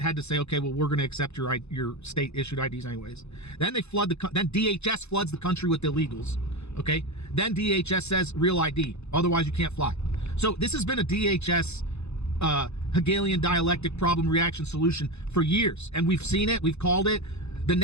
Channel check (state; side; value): late; right; 0.80 ms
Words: had to say, okay, well, we're going to accept your state issued IDs anyways. Then then DHS floods the country with illegals. Okay, then DHS says real ID, otherwise you can't fly. So this has been a DHS Hegelian dialectic problem reaction solution for years, and we've seen it, we've called it. The